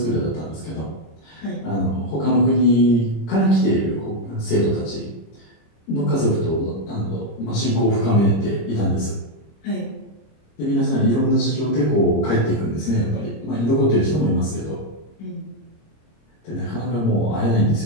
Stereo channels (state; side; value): late; right; 26 ms